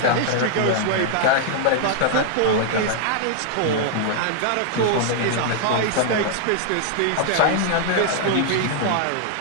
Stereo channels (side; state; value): both; different; correlation -0.01